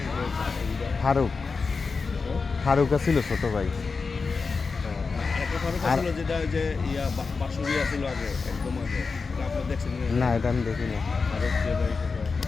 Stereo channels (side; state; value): right; quieter; 4.6 dB